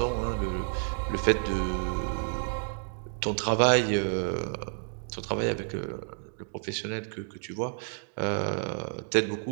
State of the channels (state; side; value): silent; left; digital silence